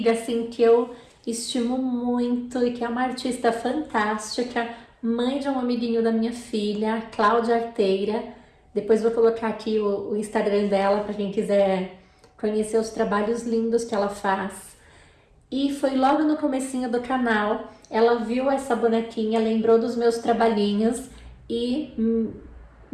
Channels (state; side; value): identical; both; correlation 1.00